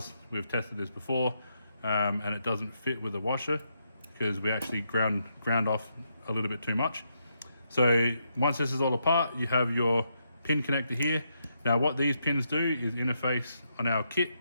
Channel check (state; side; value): inverted; both; correlation -0.80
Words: we've tested this before, and it doesn't fit with the washer because we actually ground off a little bit too much. So once this is all apart, you have your pin connector here. Now what these pins do is interface on our kit